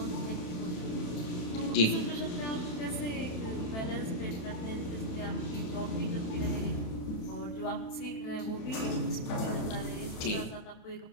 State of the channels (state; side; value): late; right; 27 ms